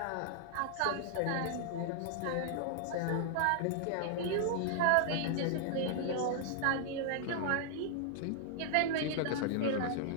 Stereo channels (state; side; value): different; both; correlation -0.01